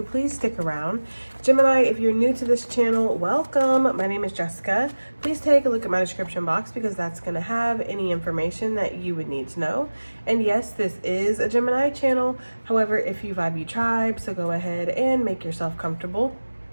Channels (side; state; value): both; inverted; correlation -1.00